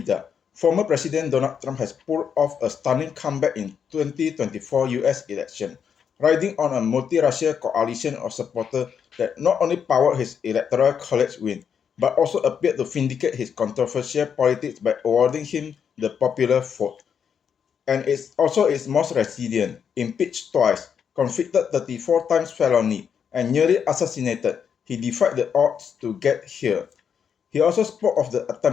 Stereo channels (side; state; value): right; quieter; 7.4 dB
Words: Former President Donald Trump has pulled off a stunning comeback in 2024 US election, riding on a multi-racial coalition of supporters that not only powered his electoral college win, but also appeared to vindicate his controversial politics by awarding him the popular vote. And it's also its most resilient, impeached twice, convicted 34 times felony, and nearly assassinated. He defied the odds to get here. He also spoke of the